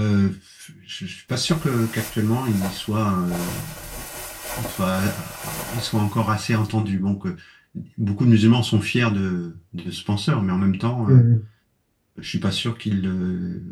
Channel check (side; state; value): both; identical; correlation 1.00